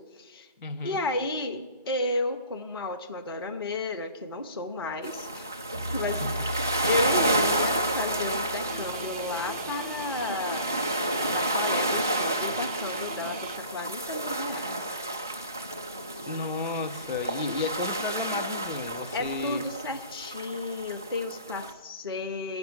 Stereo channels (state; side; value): inverted; both; correlation -0.46